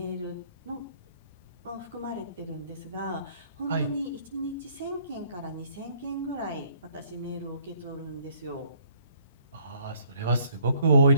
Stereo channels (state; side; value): inverted; both; correlation -0.62